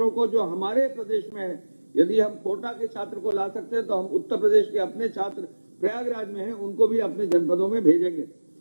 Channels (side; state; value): both; inverted; correlation -1.00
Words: को जो हमारे प्रदेश में है, यदि हम कोटा के छात्र को ला सकते हैं तो हम उत्तर प्रदेश के अपने छात्र प्रयागराज में हैं उनको भी अपने जनपदों में भेजेंगे।